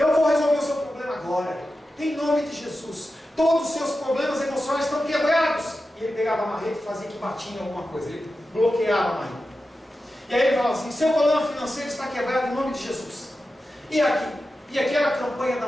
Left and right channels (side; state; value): both; normal; correlation 0.92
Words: vou resolver o seu problema agora, em nome de Jesus. Todos os seus problemas emocionais estão quebrados. E ele pegava a marreta e fazia que batia em alguma coisa, ele bloqueava a marreta. E aí ele falava assim: seu problema financeiro está quebrado em nome de Jesus. E aquela campanha